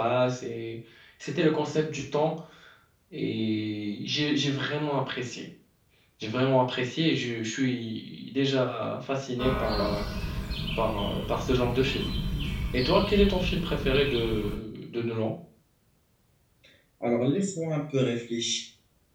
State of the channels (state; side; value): identical; both; correlation 1.00